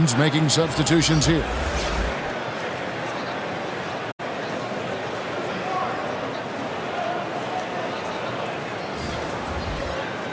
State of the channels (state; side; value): identical; both; correlation 1.00